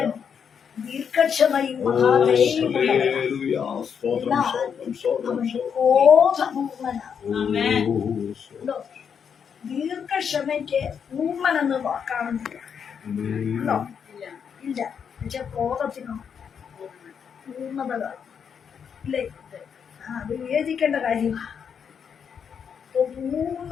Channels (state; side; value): quieter; right; 7.2 dB